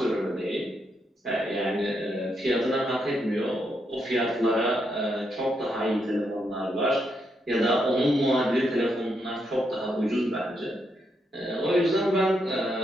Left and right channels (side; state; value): both; normal; correlation 0.80